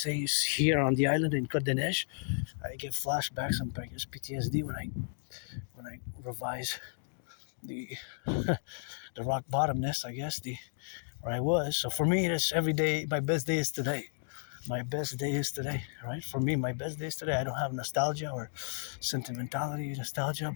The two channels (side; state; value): right; silent; digital silence